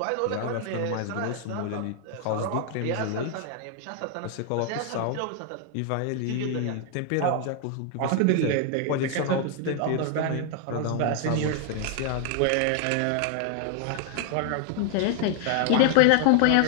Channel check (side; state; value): both; different; correlation 0.00